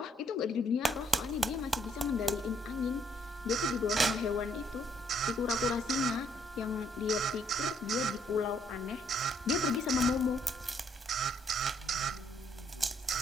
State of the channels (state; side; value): normal; both; correlation 0.69